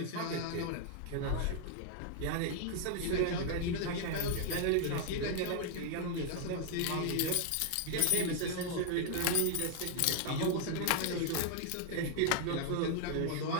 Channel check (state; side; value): different; both; correlation 0.00